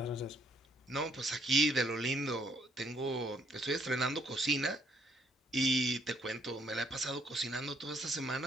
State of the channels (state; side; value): normal; both; correlation 0.69